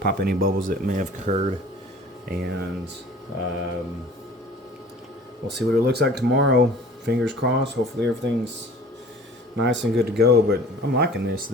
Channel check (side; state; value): both; normal; correlation 0.46